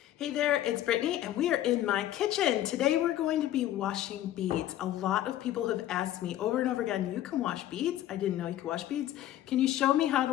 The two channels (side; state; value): right; quieter; 13.0 dB